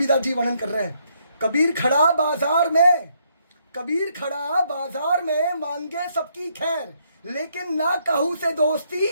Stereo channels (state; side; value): inverted; both; correlation -0.73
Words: जी वर्णन कर रहे हैं, कबीर खड़ा बाजार में मांगे सबकी खैर, लेकिन ना कहू से